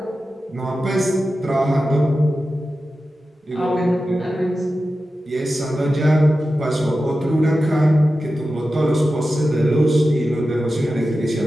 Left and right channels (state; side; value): normal; both; correlation 0.93